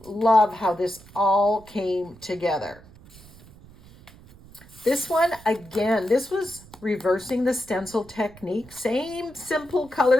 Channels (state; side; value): noise; right; rumble, 22 dB below the sound